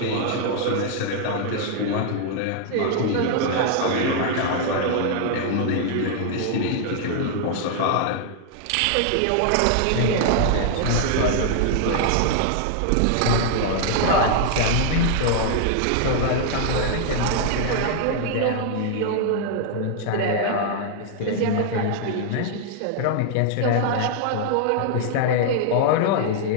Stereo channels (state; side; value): different; both; correlation -0.01